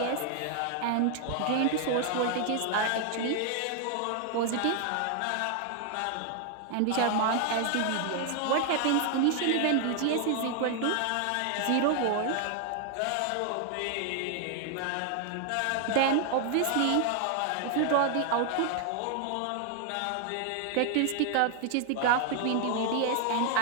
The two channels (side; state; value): both; different; correlation 0.00